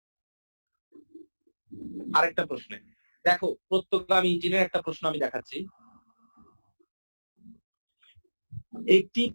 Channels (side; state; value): both; inverted; correlation -1.00